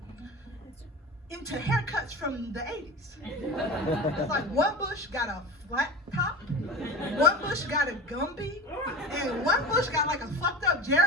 into haircuts from the 80s. It's like one bush got a flat top, one bush got a Gumby, and one bush got like a fucked up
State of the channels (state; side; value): normal; both; correlation 0.32